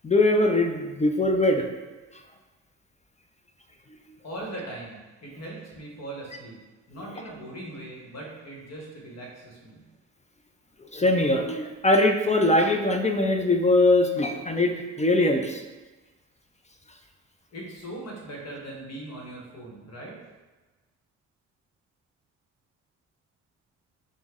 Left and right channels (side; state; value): both; normal; correlation 0.38